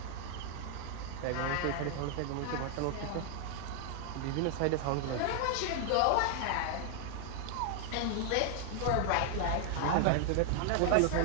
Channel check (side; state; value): both; different; correlation 0.00